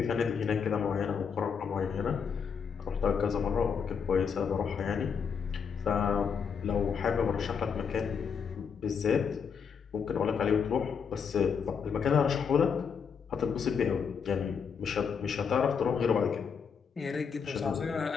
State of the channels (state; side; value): quieter; right; 6.5 dB